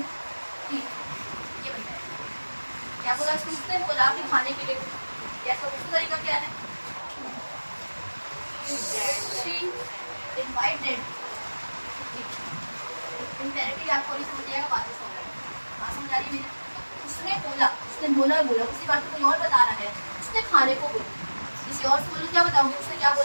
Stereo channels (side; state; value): both; inverted; correlation -1.00